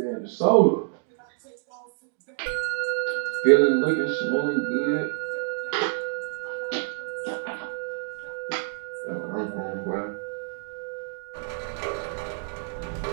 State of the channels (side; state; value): left; silent; digital silence